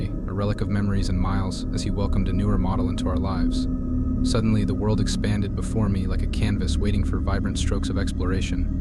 a relic of memories and miles, as he welcomed a newer model into our lives. Suddenly, the world expanded before me like a canvas waiting for vibrant strokes of exploration.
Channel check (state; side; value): identical; both; correlation 1.00